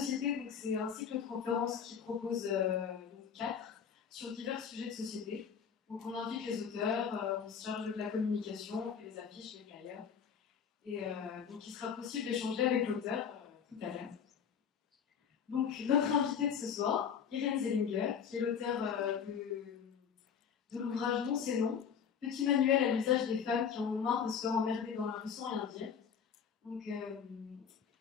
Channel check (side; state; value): right; quieter; 7.3 dB